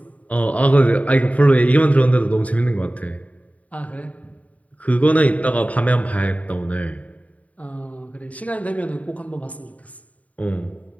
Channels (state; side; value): late; right; 0.069 ms